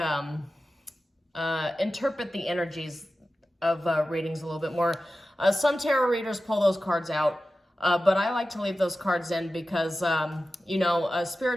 interpret the energies of readings a little bit more. Some tarot readers pull those cards out, but I like to leave those cards in because, you know,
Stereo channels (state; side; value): normal; both; correlation 0.94